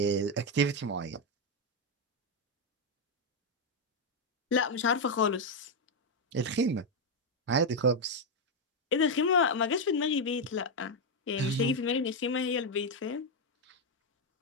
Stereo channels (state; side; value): normal; both; correlation 0.03